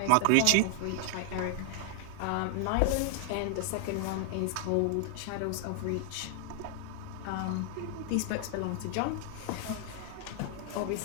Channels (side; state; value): both; different; correlation 0.00